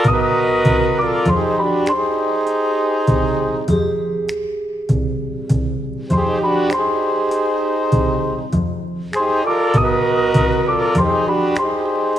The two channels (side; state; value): both; normal; correlation 0.85